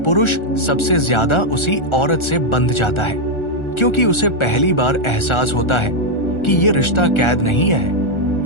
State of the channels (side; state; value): right; late; 1.4 ms